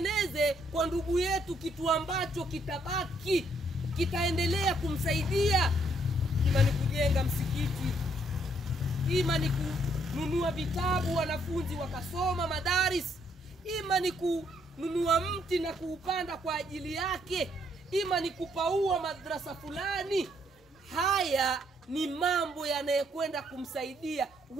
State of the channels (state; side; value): normal; both; correlation 0.70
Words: kwa ndugu yetu kitu ambacho kitabaki, kitaendelea kumsaidia. Ima ni kujenga msikiti, ima ni kununua vitabu wanafunzi wakasoma madaris, ima ni kununua mti na kuupanda kwa ajili yake, ima ni kupaua madrasa fulani. Haya ni mambo yanayokwenda kumsaidia.